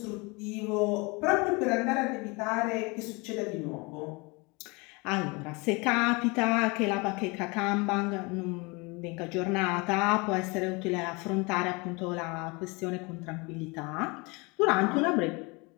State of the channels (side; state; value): right; quieter; 27.4 dB